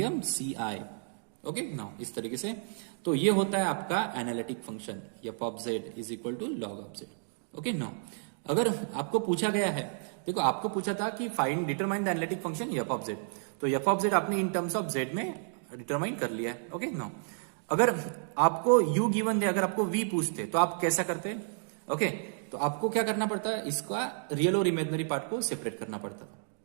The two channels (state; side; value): silent; left; digital silence